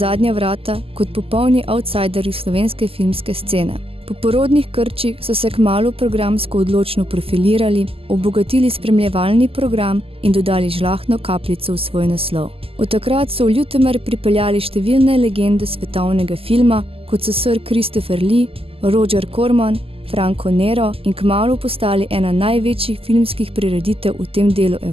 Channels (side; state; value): left; late; 0.28 ms